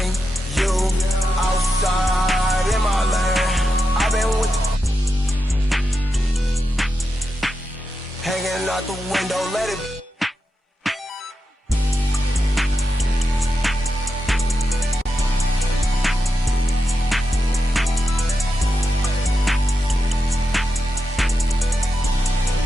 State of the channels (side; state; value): both; normal; correlation 0.88